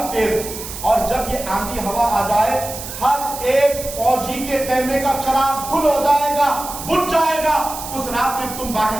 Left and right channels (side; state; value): right; noise; hiss, 10 dB below the sound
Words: تیز، اور جب یہ آندھی ہوا آ جائے ہر ایک فوجی کے خیمے کا چراغ گل ہو جائے گا، بجھ جائے گا، اس رات میں تم باہر